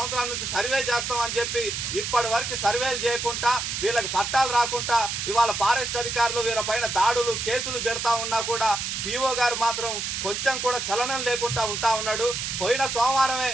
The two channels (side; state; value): right; noise; hiss, 3 dB below the sound